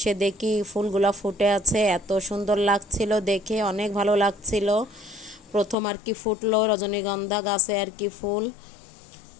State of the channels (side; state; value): right; drops out; at 5.8 s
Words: দেখি ফুলগুলা ফুটে আছে, এত সুন্দর লাগছিল দেখে, অনেক ভালো লাগছিল। প্রথম আর কি ফুটলো রজনীগন্ধা গাছে আর কি ফুল,